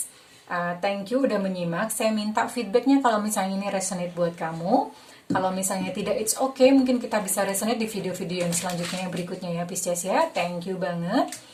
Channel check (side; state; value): both; identical; correlation 1.00